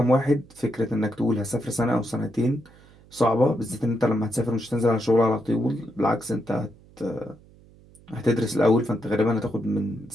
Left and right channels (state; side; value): noise; right; hum, 26 dB below the sound